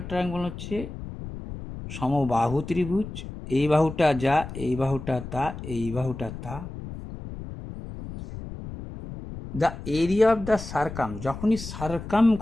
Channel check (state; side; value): noise; left; rumble, 10 dB below the sound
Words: triangle হচ্ছে সমবাহু ত্রিভুজ, এই বাহুটা যা, এই বাহুটা তা, এই বাহুটা তা। The area of the circum, যখনই সার্কাম